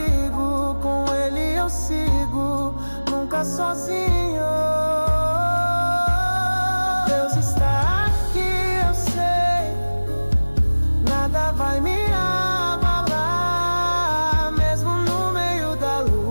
Com Ele eu sigo, nunca sozinho. Deus está aqui, eu sei, nada vai me abalar. Mesmo no meio da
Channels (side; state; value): both; inverted; correlation -1.00